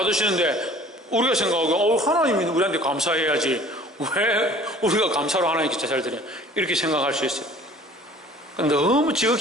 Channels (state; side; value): normal; both; correlation 0.49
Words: 우리가 생각하고 하나님이 우리한테 감사해야지 왜 우리가 감사로 하나님께 제사를 드려, 이렇게 생각할 수 있어요. 너무